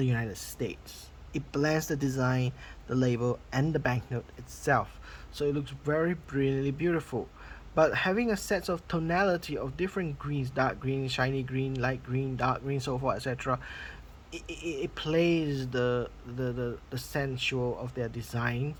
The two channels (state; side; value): identical; both; correlation 1.00